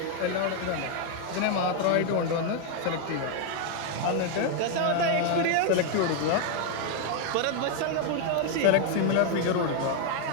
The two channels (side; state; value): both; different; correlation 0.01